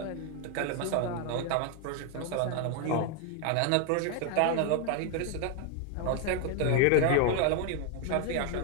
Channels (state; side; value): different; both; correlation 0.01